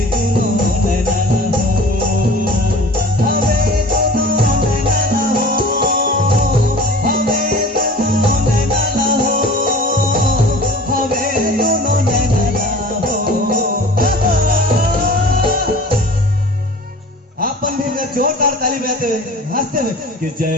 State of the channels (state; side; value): normal; both; correlation 0.43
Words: दोनों जोरदार ताली बजाते हुए हंसते हुए कि जय